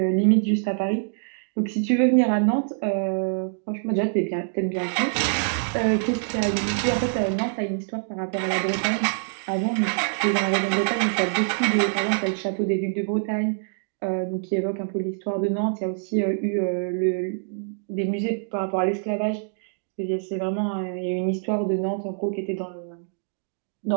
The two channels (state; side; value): silent; left; digital silence